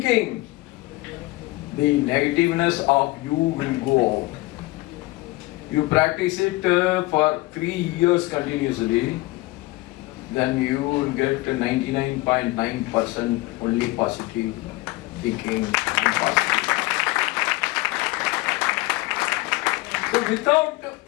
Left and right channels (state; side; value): quieter; right; 21.3 dB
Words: the negativeness of you will go out. You practice it for 3 years continuously, then you will get 99.9% only positive thinking and positive. So without